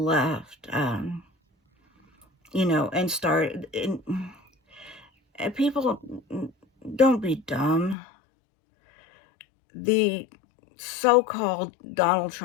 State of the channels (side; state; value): right; drops out; at 8.0 s